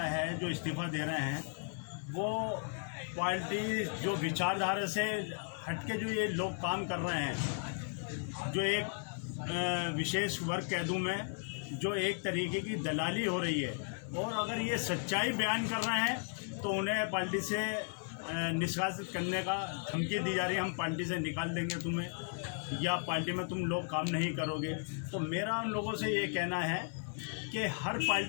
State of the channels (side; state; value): right; silent; 54 dB below the other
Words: है, जो इस्तीफा दे रहे हैं, वो पार्टी जो विचारधारा से हटके जो ये लोग काम कर रहे हैं, जो एक विशेष वर्ग कह दूँ मैं, जो एक तरीके की दलाली हो रही है। और अगर ये सच्चाई बयान कर रहे हैं तो उन्हें पार्टी से निष्कासित करने का धमकी दी जा रही है, हम पार्टी से निकाल देंगे तुम्हें, या पार्टी में तुम लोग काम नहीं करोगे। तो मेरा उन लोगों से ये कहना है कि हर